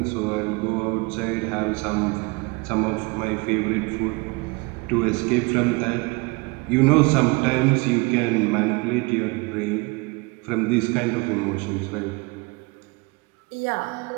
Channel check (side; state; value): left; quieter; 26.9 dB